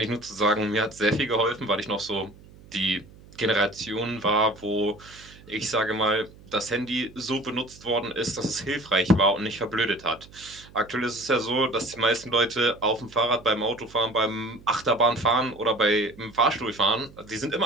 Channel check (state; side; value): noise; right; hum, 22 dB below the sound